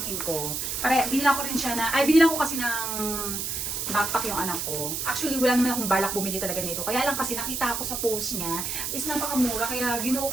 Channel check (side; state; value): right; noise; hiss, 3 dB below the sound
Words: ko. Binilan ko rin siya binilan ko kasi ng backpack yung anak ko. Actually, wala naman akong balak bumili talaga nito. Kaya lang kasi nakita ko sa post niya, is napakamura, kaya ginuo